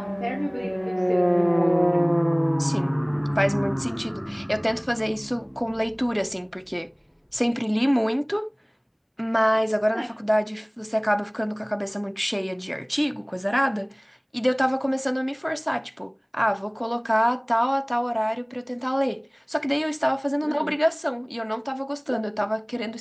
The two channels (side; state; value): both; identical; correlation 1.00